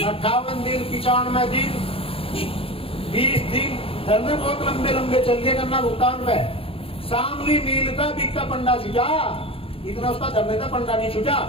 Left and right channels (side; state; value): right; late; 0.27 ms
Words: 58 दिन 95 दिन 20 दिन धरने बहुत लंबे लंबे चल गए गन्ना भुगतान पे। शामली मील का बिक्का पंडा छुटा, इतना उसका धरने का पंडा नहीं छुटा।